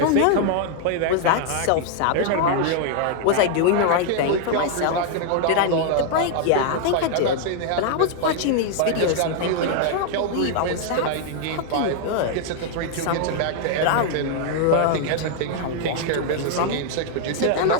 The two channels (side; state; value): both; different; correlation 0.00